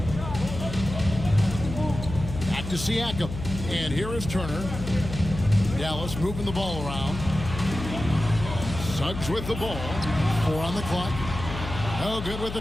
Back Back to Siakam. And here is Turner. Dallas moving the ball around. Suggs with the ball. 4 on the clock. No good with the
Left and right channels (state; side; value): noise; left; hum, 8 dB below the sound